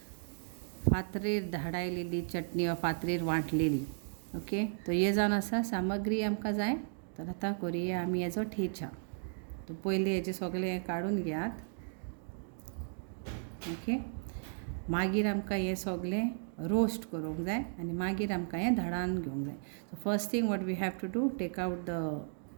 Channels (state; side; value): silent; left; digital silence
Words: फातरीर धाडायलेली चटणी वा फातरीर वांटलेली. ओके, तो हे जावन आसा सामग्री आमकां जाय. तर आतां करुया आमी हेजो थेचा. तो पयलीं हेजें सगळें हें काडून घेयात. ओके, मागीर आमकां हें सगळें रोस्ट करूंक जाय आनी मागीर आमकां हें धाडान घेवंक जाय. So first thing what we have to do, take out the